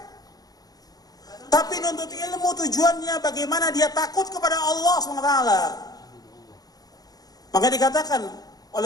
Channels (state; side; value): late; right; 0.18 ms